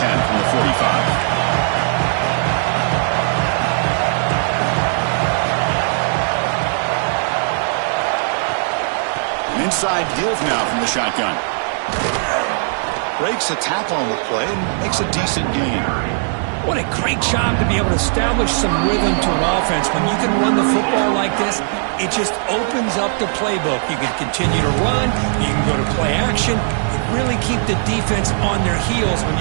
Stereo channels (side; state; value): left; silent; digital silence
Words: from the 45. Inside give now from the shotgun. Breaks a tackle on the play and makes a decent gain. What a great job to be able to establish some rhythm to an offense. When you can run the football like this, it just opens up the playbook. You can continue to run. You can go to play action. You really keep the defense on their heels when